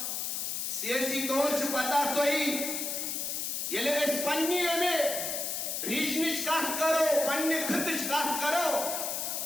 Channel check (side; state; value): left; noise; hiss, 2 dB below the sound